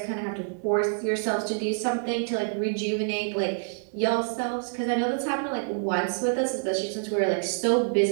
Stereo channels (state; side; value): silent; left; digital silence